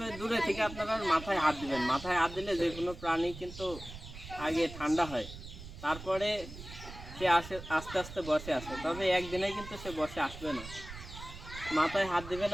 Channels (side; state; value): right; noise; rumble, 13 dB below the sound